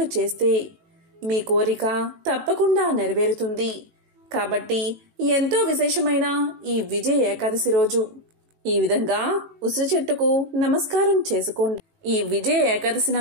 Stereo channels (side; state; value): left; late; 18 ms